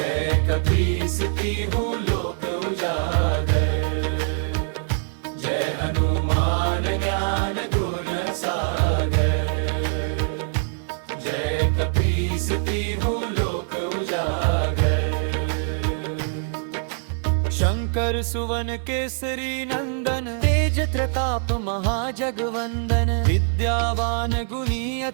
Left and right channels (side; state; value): left; silent; 58 dB below the other